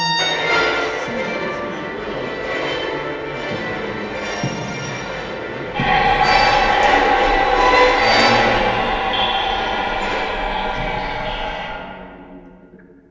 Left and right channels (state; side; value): identical; both; correlation 1.00